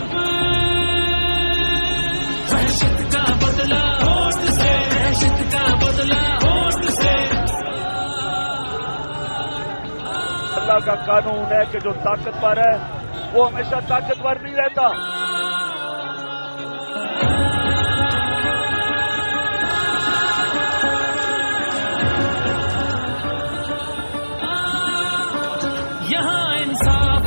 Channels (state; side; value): inverted; both; correlation -1.00